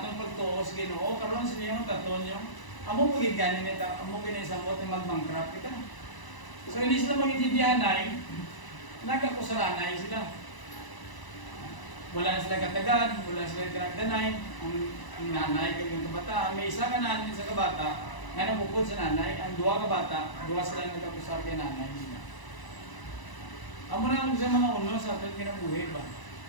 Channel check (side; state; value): right; late; 1.0 ms